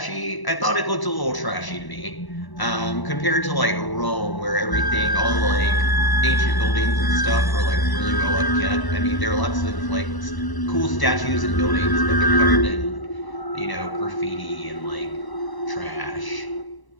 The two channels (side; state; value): right; late; 1.0 ms